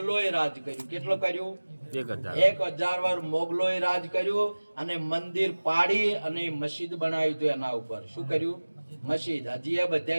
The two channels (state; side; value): inverted; both; correlation -1.00